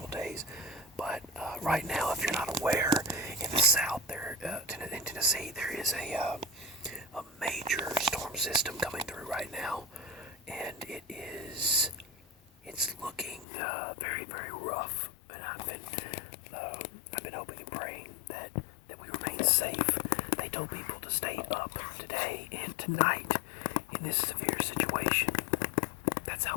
days. But right now, if you're not aware, in the south, there in Tennessee, there is a major storm system coming through right now, and it's looking very, very rough. And I've been hoping and praying that we remain safe. They told people to stay up today and tonight in this severe situation. That's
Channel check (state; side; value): drops out; right; at 13.5 s